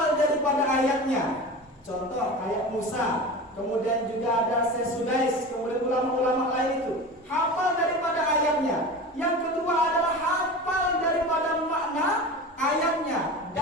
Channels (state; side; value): normal; both; correlation 0.31